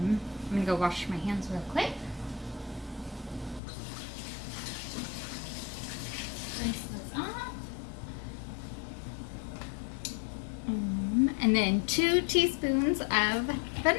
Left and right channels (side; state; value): right; drops out; at 3.6 s